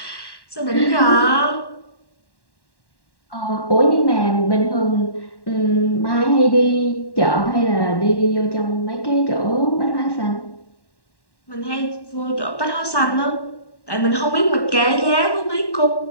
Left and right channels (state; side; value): late; right; 1.1 ms